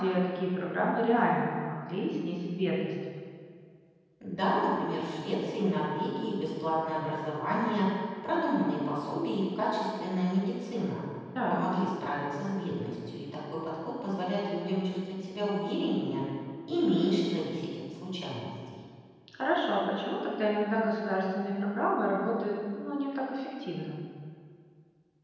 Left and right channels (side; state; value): both; identical; correlation 1.00